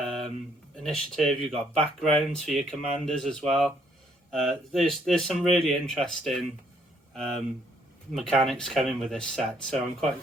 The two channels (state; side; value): normal; both; correlation 0.68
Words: initiative, you've got backgrounds for your commanders as well. There's some really interesting mechanics coming with this set, so I'm quite